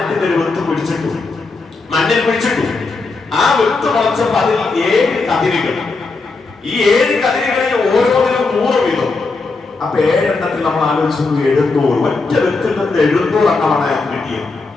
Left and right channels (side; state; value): right; quieter; 3.9 dB